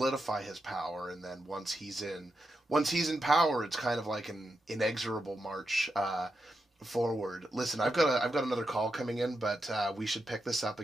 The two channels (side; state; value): both; normal; correlation 0.86